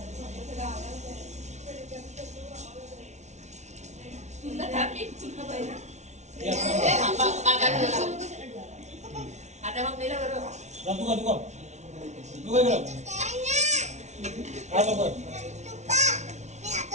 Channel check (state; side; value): late; left; 0.33 ms